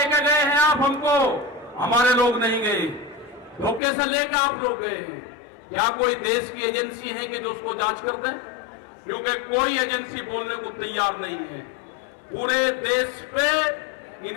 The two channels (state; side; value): drops out; right; at 3.8 s